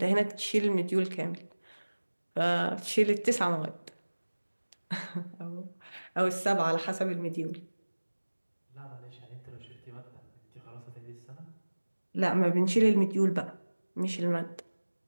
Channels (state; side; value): inverted; both; correlation -1.00